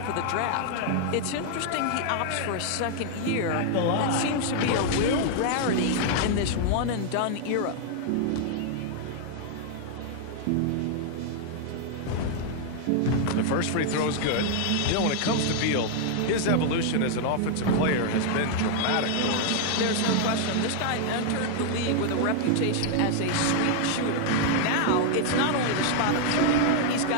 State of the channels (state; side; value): different; both; correlation 0.00